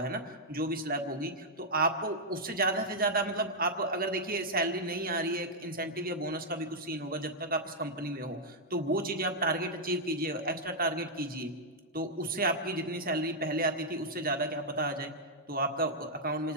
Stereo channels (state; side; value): normal; both; correlation -0.06